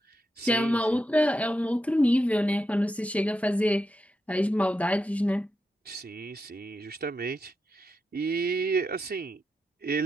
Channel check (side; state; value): both; normal; correlation 0.86